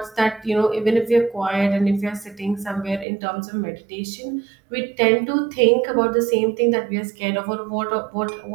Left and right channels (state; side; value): drops out; left; at 3.1 s